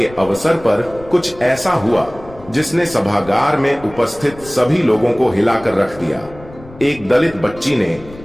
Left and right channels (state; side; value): noise; left; rumble, 19 dB below the sound